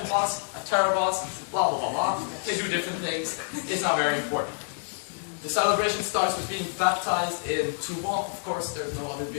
boss, a terror boss, blah blah blah blah. They do different things. It's not very important. The celebration starts with being baptized in Tuba. Of course, there's no other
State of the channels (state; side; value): silent; right; 60 dB below the other